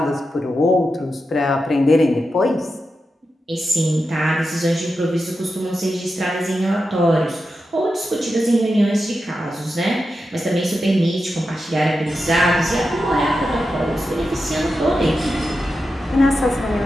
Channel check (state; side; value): normal; both; correlation 0.89